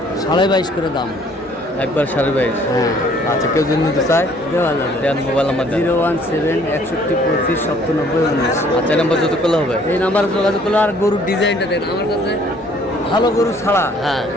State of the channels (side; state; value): both; normal; correlation 0.59